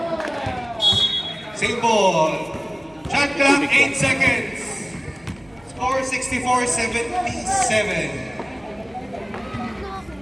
Same ball. Shot clock, 8 seconds. Score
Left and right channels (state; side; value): noise; right; hum, 29 dB below the sound